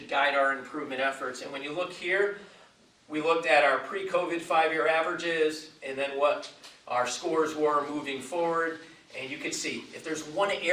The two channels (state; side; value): identical; both; correlation 1.00